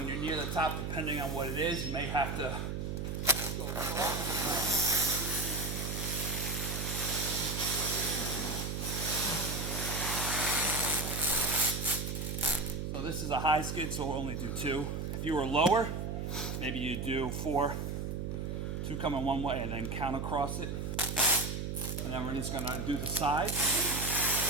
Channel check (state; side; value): noise; right; hum, 3 dB below the sound